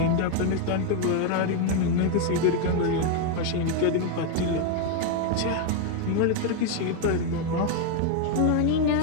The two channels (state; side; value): different; both; correlation 0.01